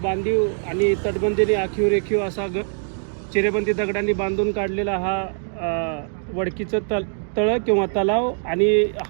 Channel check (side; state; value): left; silent; digital silence